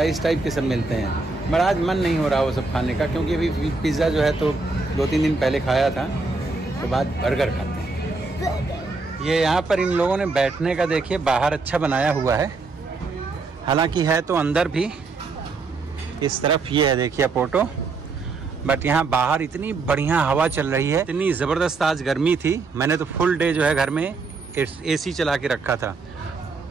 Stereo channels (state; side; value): quieter; left; 3.9 dB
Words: इस टाइप के सब मिलते हैं। बट आज मन नहीं हो रहा वो सब खाने का क्योंकि अभी पिज़्ज़ा जो है तो 2-3 दिन पहले खाया था, तो बाद बर्गर खाते हैं। ये यहाँ पर इन लोगों ने बैठने का देखिए बाहर अच्छा बनाया हुआ है, हालांकि है तो अंदर भी। इस तरफ ये है देखिए अपोर्टो, बट यहाँ बाहर इतनी बढ़िया हवा चल रही है, इतनी ज़बरदस्त। आज गर्मी थी, मैंने तो फुल डे जो है घर में AC चला के रखा था।